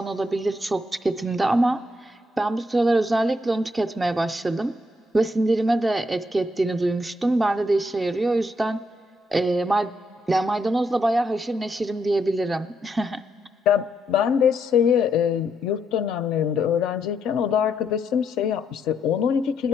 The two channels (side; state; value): both; normal; correlation 0.77